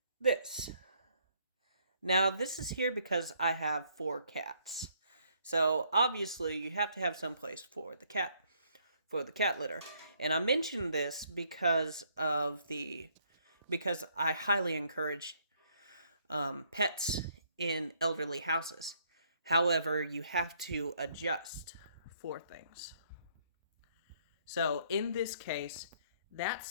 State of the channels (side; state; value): both; inverted; correlation -0.68